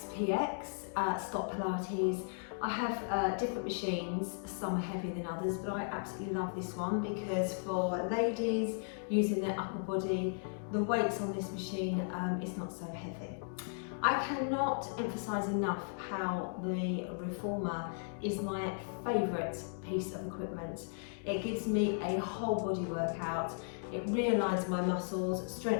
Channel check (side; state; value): right; silent; digital silence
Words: stop Pilates. I have different machines, some are heavier than others, but I absolutely love this one because for ladies using their upper body, the weights on this machine is not so heavy. I cannot emphasise enough how the Reformer is my favourite piece of equipment. It gives me a whole body workout. It realigns my muscles,